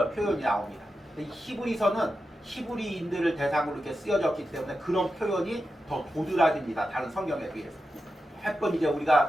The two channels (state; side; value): normal; both; correlation 0.90